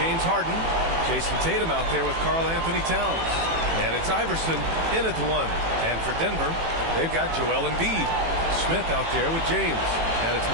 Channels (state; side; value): late; left; 18 ms